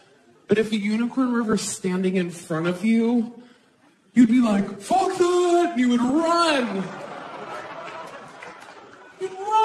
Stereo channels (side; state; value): both; identical; correlation 1.00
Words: But if a unicorn were ever standing in front of you, you'd be like, fuck that! And you would run. You'd